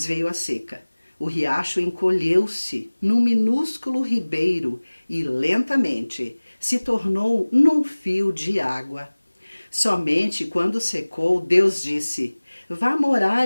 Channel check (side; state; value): both; inverted; correlation -1.00